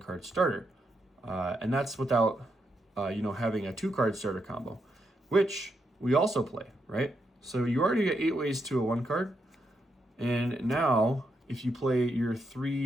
starter, and that's without having a 2-card starter combo, which we also play, right? So you already get 8 ways to a 1-card, and now if you play your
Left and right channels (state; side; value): normal; both; correlation 0.81